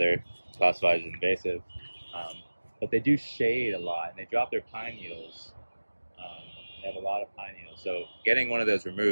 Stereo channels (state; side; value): inverted; both; correlation -1.00